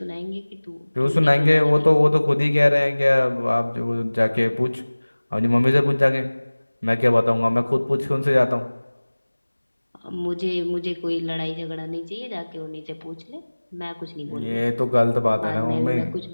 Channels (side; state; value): both; inverted; correlation -1.00